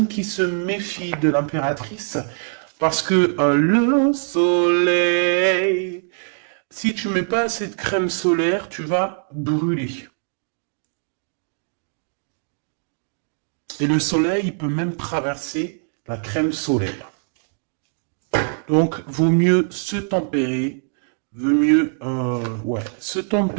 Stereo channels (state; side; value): silent; left; 64 dB below the other